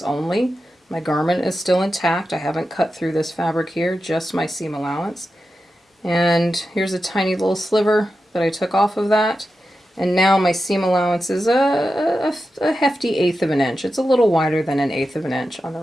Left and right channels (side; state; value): both; normal; correlation 0.91